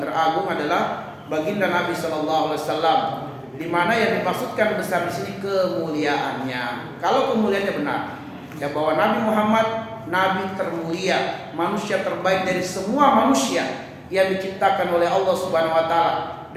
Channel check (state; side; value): identical; both; correlation 1.00